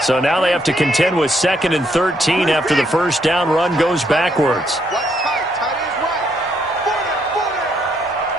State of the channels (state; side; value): normal; both; correlation 0.73